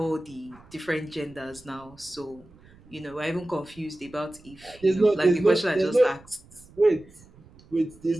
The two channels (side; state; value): right; noise; rumble, 24 dB below the sound